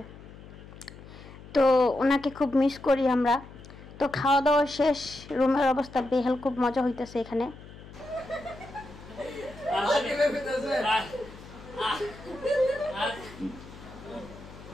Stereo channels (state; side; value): noise; left; hum, 17 dB below the sound